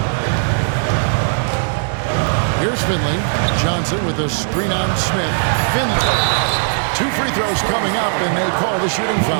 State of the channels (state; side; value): silent; left; digital silence